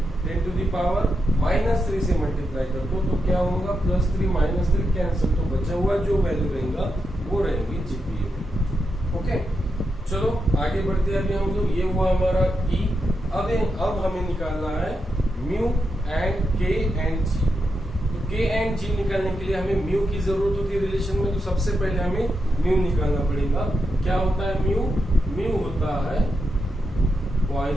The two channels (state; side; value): normal; both; correlation 0.85